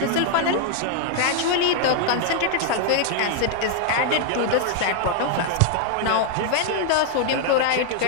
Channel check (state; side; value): different; both; correlation 0.00